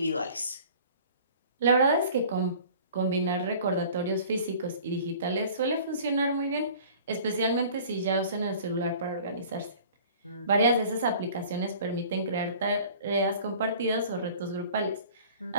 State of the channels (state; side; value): inverted; both; correlation -0.47